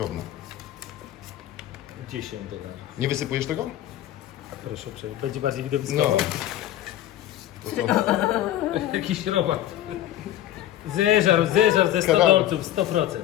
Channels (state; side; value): quieter; right; 12.8 dB